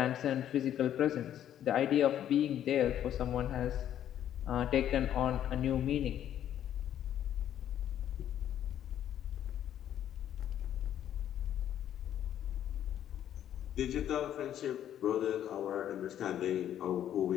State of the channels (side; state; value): right; quieter; 10.8 dB